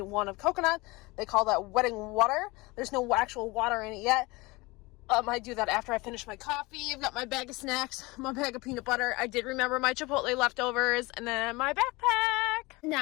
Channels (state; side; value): quieter; right; 23.4 dB